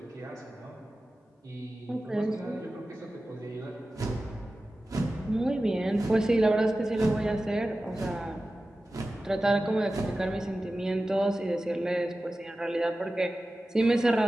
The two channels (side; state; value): both; normal; correlation 0.95